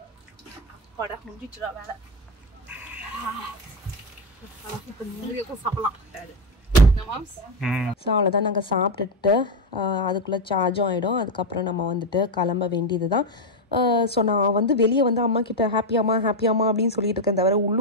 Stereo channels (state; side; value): normal; both; correlation 0.08